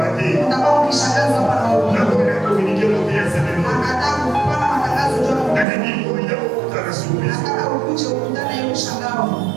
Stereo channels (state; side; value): drops out; left; at 5.7 s